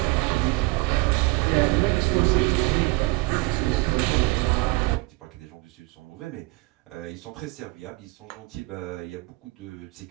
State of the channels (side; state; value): left; quieter; 23.5 dB